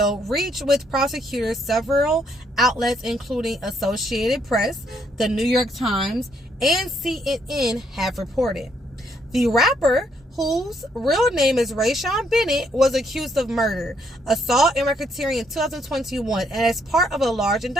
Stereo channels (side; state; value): both; normal; correlation 0.71